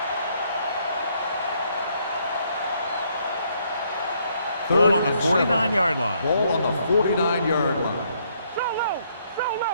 Ball on the 49-yard line. Ball on the 49-yard line. So low.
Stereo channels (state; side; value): inverted; both; correlation -0.70